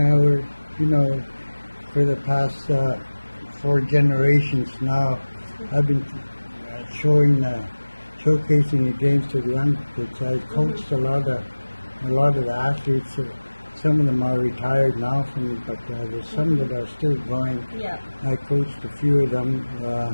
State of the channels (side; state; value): both; inverted; correlation -1.00